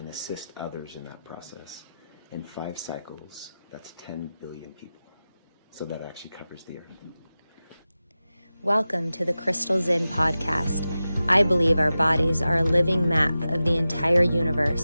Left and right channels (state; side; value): inverted; both; correlation -0.94